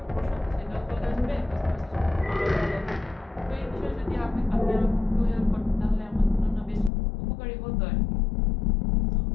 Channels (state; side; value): drops out; right; at 6.9 s